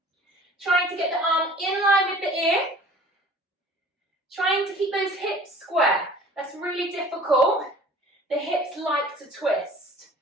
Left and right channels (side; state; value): both; normal; correlation 0.47